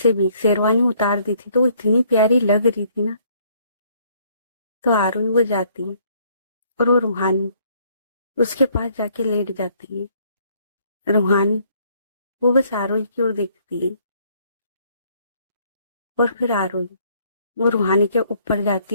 भी शेरवानी उतार दी थी, तो वो इतनी प्यारी लग रही थी ना। तो आरोही वो जाती है, और वो रूहानी उसके पास जाके लेट जाती है। रूहानी वो बस आरोही की ओर देखती है, और फिर आरोही वो रूहानी के ऊपर जाती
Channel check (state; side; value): inverted; both; correlation -0.64